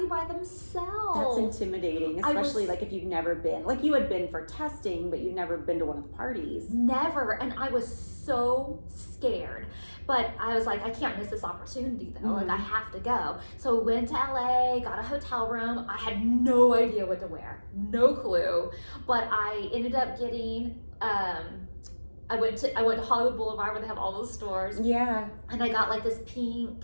by themselves? That's intimidating, especially like if you've never been. Like you had been for testing, but you'd never been to one of the parties. Never. And I was so scared. But I was like, I can't miss this opportunity though. Like I have to go. So we went to LA, got a hotel room. I had no idea what to wear. No clue. But I ended up getting I went to Hollywood Boulevard where they have all those stores. Yeah. And I got like this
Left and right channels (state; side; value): inverted; both; correlation -1.00